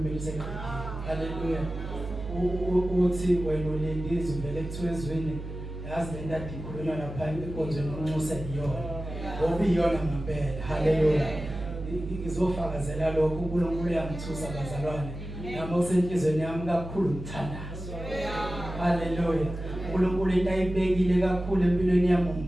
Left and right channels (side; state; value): right; noise; hum, 9 dB below the sound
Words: seqedile. Haleluya. Uthi wena ulindizwe vele kuthiwa ezweni yazi le ndadi ikhulunywa lapha enkonzweni unxusa iyona ngoba iyona ngempela. Haleluya. Ngizofakazela lokho uNkulunkulu uyangithusa bazalwane nami usenhlizweni yami kakhulu ngithandazo. Haleluya. uNkulunkulu into ayibekile kakhulu empilweni yami